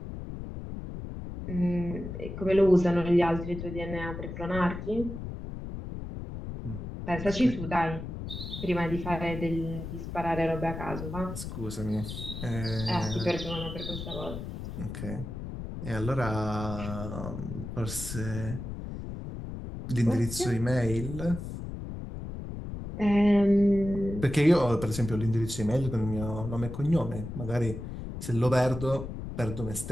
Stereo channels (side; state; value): left; noise; rumble, 8 dB below the sound